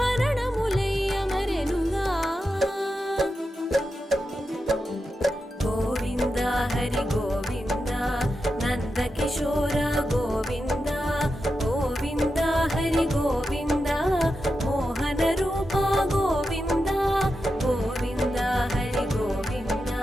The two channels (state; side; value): normal; both; correlation 0.89